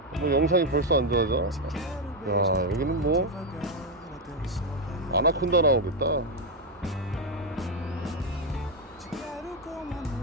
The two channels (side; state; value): both; normal; correlation 0.04